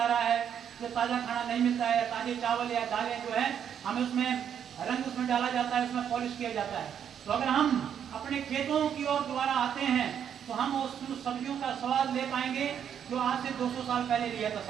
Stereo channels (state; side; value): quieter; left; 8.6 dB